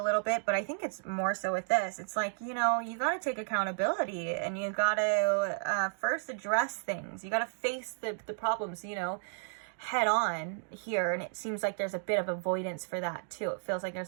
little bit, but I think it's more so with this. It's like, you got to take accountability, and you got to first address things. You got to face the problems, head on here, and it seems like there's a bit of avoidance for that too. It feels like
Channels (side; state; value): left; silent; digital silence